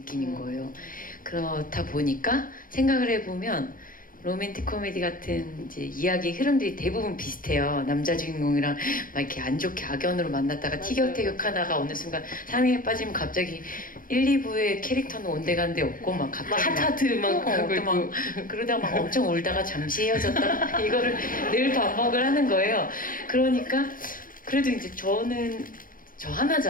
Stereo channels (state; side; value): late; right; 0.40 ms